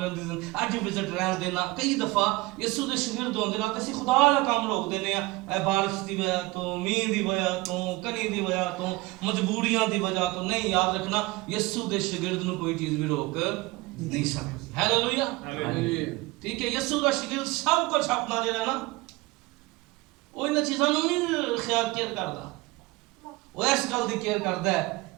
ਦੀ, ਅੱਜ ਵਿਜ਼ਿਟ ਰਹਿਣ ਦੇਣਾ। ਕਈ ਦਫਾ ਯਿਸੂ ਦੇ ਸ਼ਾਗਿਰਦ ਹੁੰਦੇ ਨਾ, ਅਸੀਂ ਖੁਦਾ ਦਾ ਕੰਮ ਰੋਕ ਦਿੰਦੇ ਆ, ਇਹ ਬਾਰਿਸ਼ ਦੀ ਵਜ੍ਹਾ ਤੋਂ, ਮੀਂਹ ਦੀ ਵਜ੍ਹਾ ਤੋਂ, ਕਣੀ ਦੀ ਵਜ੍ਹਾ ਤੋਂ, ਮਜਬੂਰੀਆਂ ਦੀ ਵਜ੍ਹਾ ਤੋਂ। ਨਹੀਂ, ਯਾਦ ਰੱਖਣਾ ਯਿਸੂ ਦੇ ਸ਼ਾਗਿਰਦ ਨੂੰ ਕੋਈ ਚੀਜ਼ ਵੀ ਰੋਕ ਨਹੀਂ ਸਕਦੀ। ਹਾਲੇਲੂਇਆ। ਠੀਕ ਹੈ, ਯਿਸੂ ਦਾ ਸ਼ਾਗਿਰਦ ਸਭ ਕੁਝ ਆਪਣਾ ਜਿਹੜਾ ਨਾ ਉਹ ਇਹਨਾਂ ਚੀਜ਼ਾਂ ਨੂੰ ਨਹੀਂ ਖਿਆਲ ਕੇਅਰ ਕਰਦਾ, ਉਹ ਇਸ ਗੱਲ ਦੀ ਕੇਅਰ ਕਰਦਾ ਹੈ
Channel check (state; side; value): quieter; left; 21.9 dB